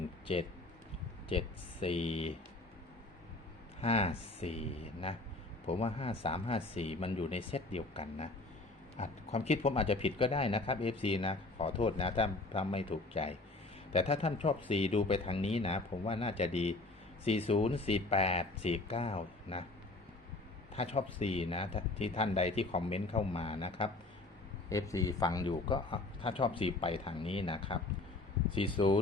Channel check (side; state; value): right; quieter; 3.0 dB